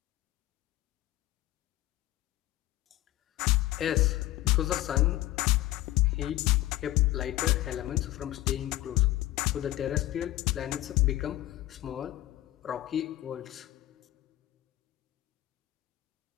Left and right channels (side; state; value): right; quieter; 15.8 dB